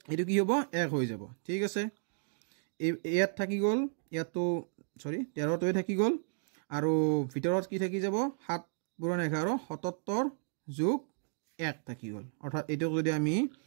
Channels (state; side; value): silent; left; digital silence